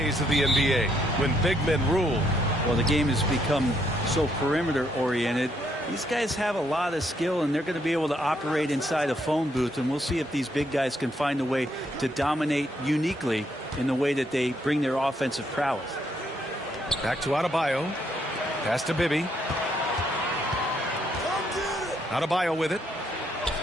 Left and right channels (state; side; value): normal; both; correlation 0.73